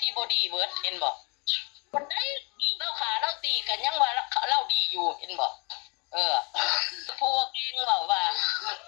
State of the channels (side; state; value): right; quieter; 30.7 dB